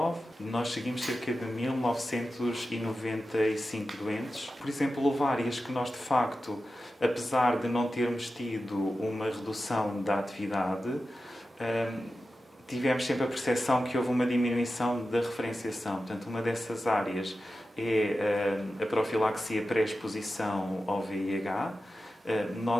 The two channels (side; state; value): both; normal; correlation 0.93